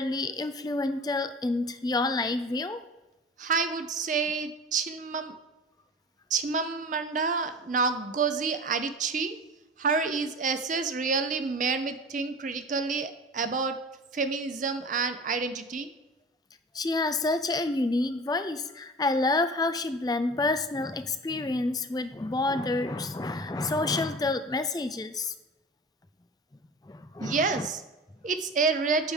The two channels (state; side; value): normal; both; correlation 0.36